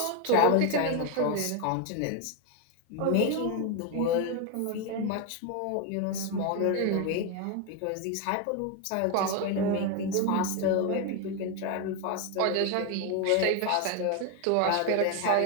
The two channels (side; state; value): both; different; correlation 0.01